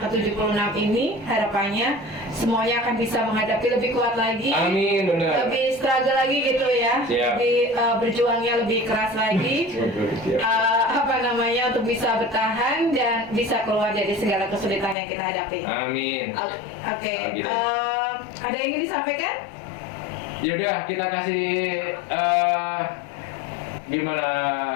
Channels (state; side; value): drops out; right; at 15.0 s